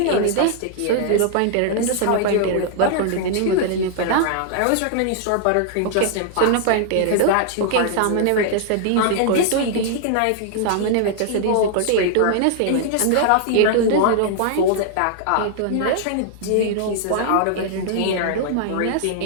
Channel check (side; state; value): both; different; correlation -0.01